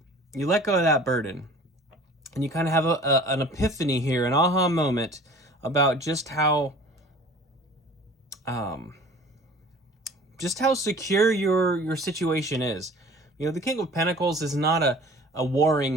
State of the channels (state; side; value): normal; both; correlation 0.46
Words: You let go of that burden, and you kind of have an epiphany here, an aha moment about just how secure your situation is. You know, the King of Pentacles is not a